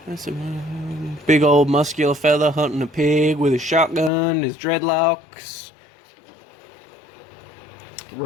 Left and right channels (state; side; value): drops out; right; at 4.1 s